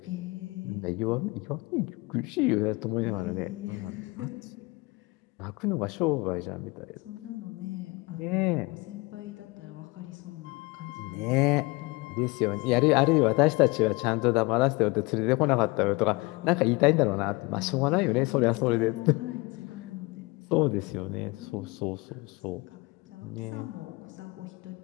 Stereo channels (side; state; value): right; quieter; 24.8 dB